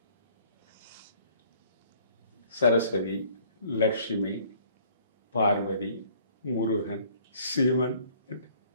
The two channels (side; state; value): both; inverted; correlation -0.57